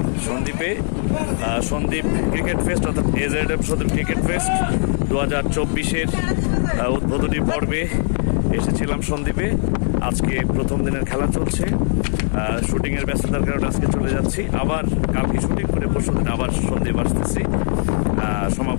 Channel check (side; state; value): right; silent; 66 dB below the other